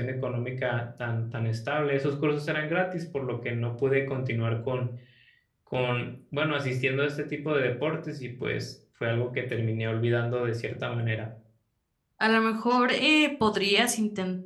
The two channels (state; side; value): identical; both; correlation 1.00